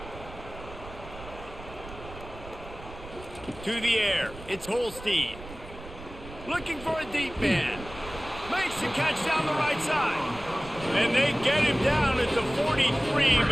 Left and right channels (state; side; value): noise; right; rumble, 15 dB below the sound